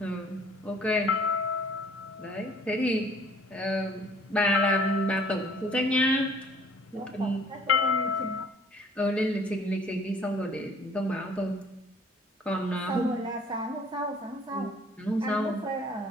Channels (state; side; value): normal; both; correlation 0.55